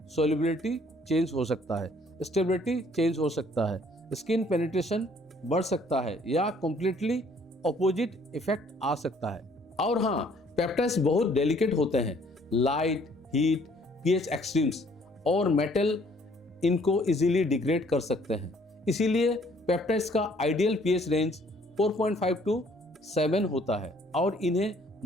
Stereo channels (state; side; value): normal; both; correlation 0.61